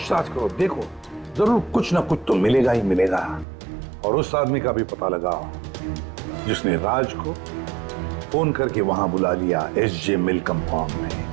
करो, देखो जरूर कुछ ना कुछ तो मिलेगा ही मिलेगा। और उस आदमी का भी पता लगाओ जिसने राज को फोन करके वहां बुला लिया एसजे मिल कंपाउंड में।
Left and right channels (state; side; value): drops out; left; at 3.5 s